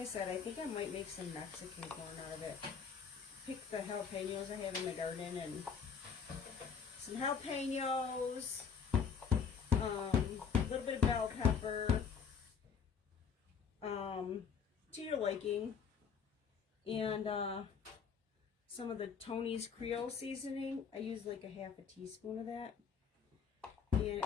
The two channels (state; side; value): quieter; right; 6.6 dB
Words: said, I think I might make some Mexican corn out of it. Pick the jalapenos I have in the garden and some jalapenos, a little bit of bell pepper, to your liking, and some of the Tony's Creole seasoning. I use like a half a teaspoon of that, and